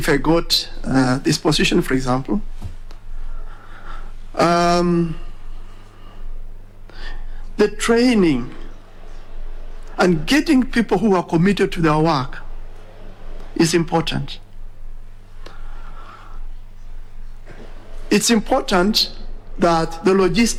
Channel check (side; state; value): both; identical; correlation 1.00